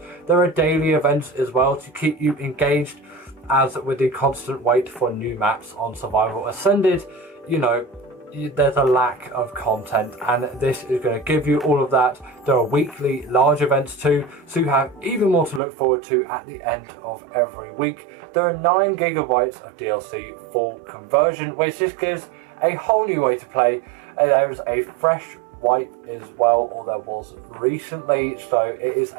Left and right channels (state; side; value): drops out; left; at 15.6 s